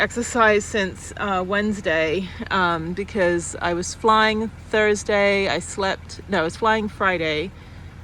since Wednesday because I was flying Thursday. I was flying Friday.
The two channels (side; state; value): both; identical; correlation 1.00